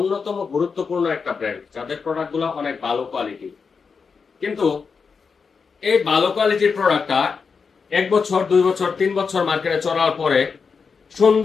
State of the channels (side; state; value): right; quieter; 5.4 dB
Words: গুরুত্বপূর্ণ একটা ব্র্যান্ড, যাদের প্রোডাক্ট গুলো অনেক ভালো কোয়ালিটি। কিন্তু এই ভালো কোয়ালিটির প্রোডাক্টটা 1 বছর, 2 বছর, 3 বছর মার্কেটে চলার পরে